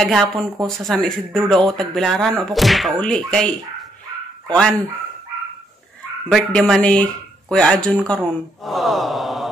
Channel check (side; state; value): both; normal; correlation 0.74